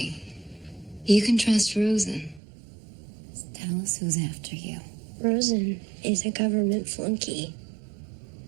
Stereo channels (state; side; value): drops out; left; at 2.4 s